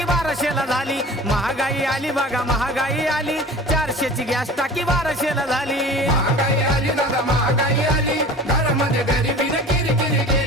1200ला झाली. महागाई आली बघा महागाई आली, 400ची गॅस टाकी 1200ला झाली. महागाई आली दादा महागाई आली, घरामध्ये गरिबीने किरकिरी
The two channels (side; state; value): both; normal; correlation 0.41